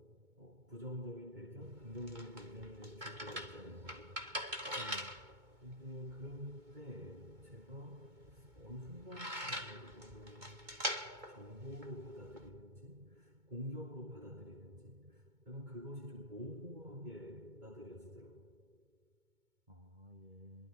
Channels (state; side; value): late; left; 2.2 ms